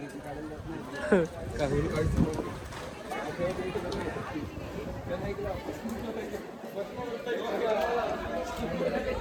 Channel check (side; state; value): both; identical; correlation 1.00